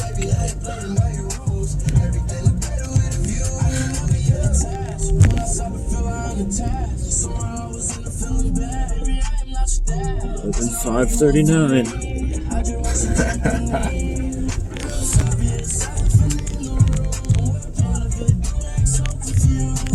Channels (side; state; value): both; identical; correlation 1.00